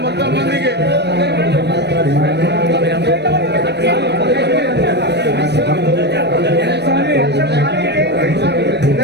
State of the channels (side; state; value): left; late; 0.50 ms